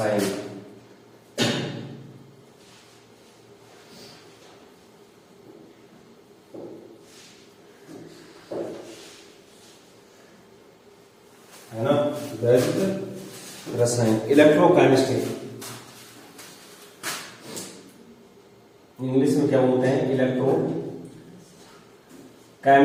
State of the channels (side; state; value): both; identical; correlation 1.00